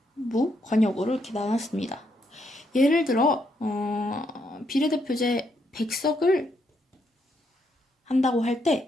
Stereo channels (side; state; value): both; normal; correlation 0.76